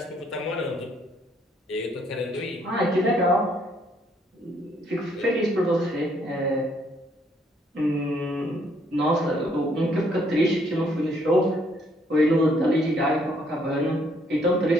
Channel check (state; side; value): normal; both; correlation 0.68